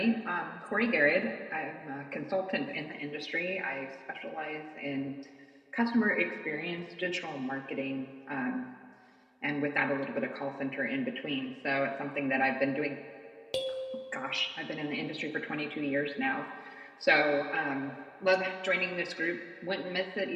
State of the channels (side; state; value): both; identical; correlation 1.00